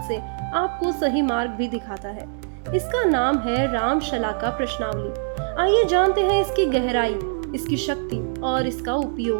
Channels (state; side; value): silent; left; digital silence